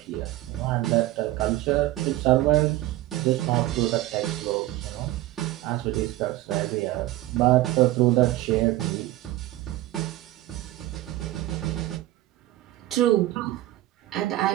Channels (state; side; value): quieter; left; 16.4 dB